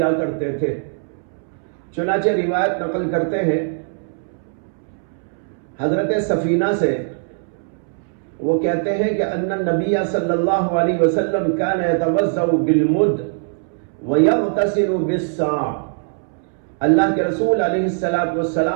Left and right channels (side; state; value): left; silent; 65 dB below the other